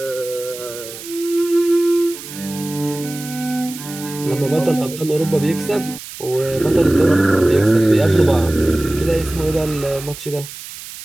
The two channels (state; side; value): noise; right; hiss, 13 dB below the sound